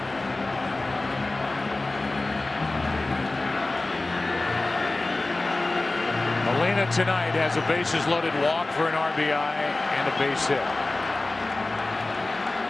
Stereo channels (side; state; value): right; quieter; 3.0 dB